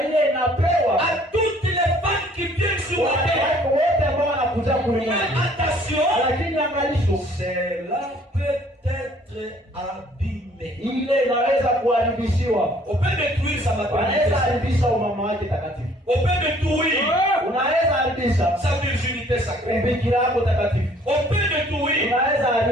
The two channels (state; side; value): normal; both; correlation 0.58